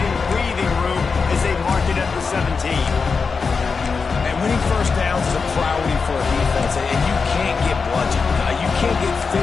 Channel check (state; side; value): quieter; right; 5.0 dB